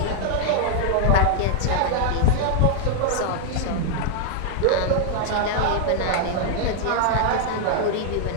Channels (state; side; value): different; both; correlation -0.01